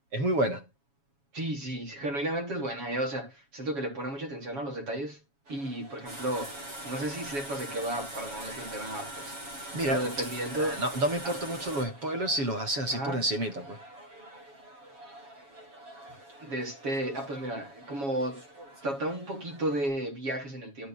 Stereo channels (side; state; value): left; late; 7.2 ms